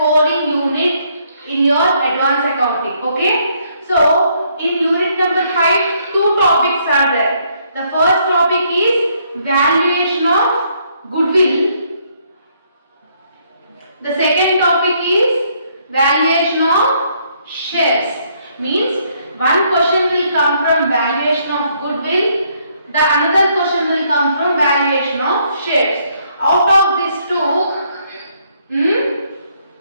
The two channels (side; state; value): both; inverted; correlation -0.69